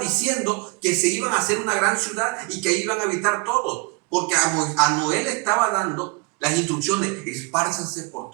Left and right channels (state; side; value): quieter; left; 30.8 dB